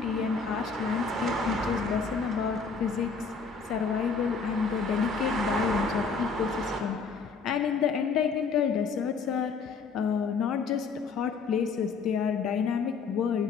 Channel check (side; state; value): right; quieter; 5.0 dB